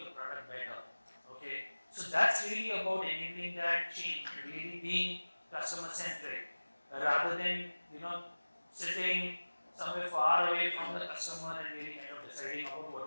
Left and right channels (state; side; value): inverted; both; correlation -1.00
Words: the product better. Okay, so that's really about enabling that change, really being customer centric rather than sitting somewhere far away from the customer and really kind of deciding about